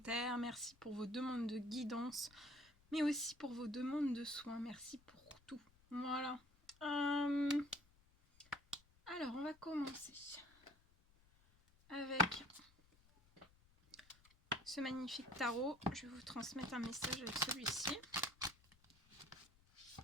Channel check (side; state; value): left; noise; rumble, 29 dB below the sound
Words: merci pour vos demandes de guidance, mais aussi pour vos demandes de soins, merci pour tout. Voilà. Alors, on va commencer avec ce magnifique tarot. Je vais vous transmettre un message avec celui-ci.